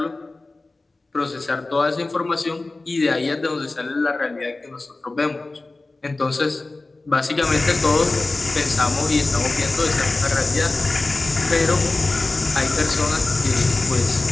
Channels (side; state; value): right; quieter; 3.2 dB